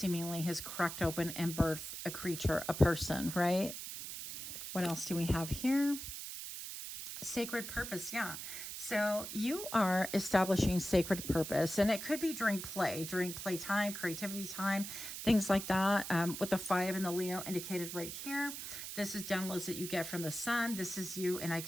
has cracked open and birthed a creature, a person, right? What else do we have here? Sacred purpose. Yeah. So you are establishing sacred purpose, and it could be during playtime, creativity time, things like that. With the 5 and the Leo indicated right here, this is downloads that you get from the sun. This is you. And I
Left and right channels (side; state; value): right; noise; hiss, 8 dB below the sound